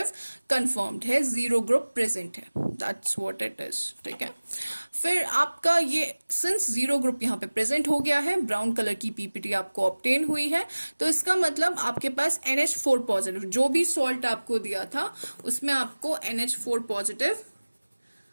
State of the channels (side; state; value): both; inverted; correlation -1.00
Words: कंफर्म्ड है, जीरो ग्रुप प्रेजेंट है, दैट्स व्हाट इट इज, ठीक है। फिर आपका ये सिंस जीरो ग्रुप यहाँ पे प्रेजेंट हो गया है, ब्राउन कलर की पीपीटी आपको ऑब्टेन हुई है, तो इसका मतलब आपके पास NH4 पॉजिटिव, जो भी सॉल्ट आपको दिया था उसमें आपको NH4 पॉजिटिव